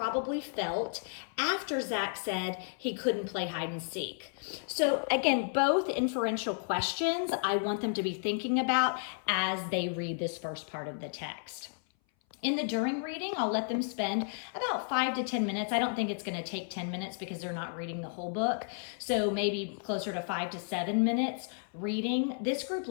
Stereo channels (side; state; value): right; silent; 56 dB below the other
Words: felt after Zach said he couldn't play hide and seek. So again, both inferential questions I want them to be thinking about as they read this first part of the text. In the during reading, I'll let them spend about 5 to 10 minutes. I don't think it's going to take 10 minutes because they're not reading the whole book. So maybe closer to 5 to 7 minutes reading. This group